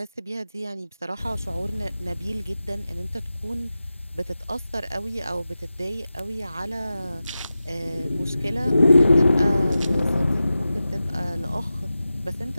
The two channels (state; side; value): inverted; both; correlation -0.94